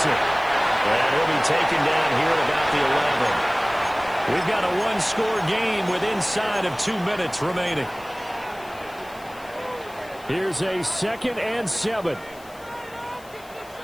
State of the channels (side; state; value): left; noise; hiss, 23 dB below the sound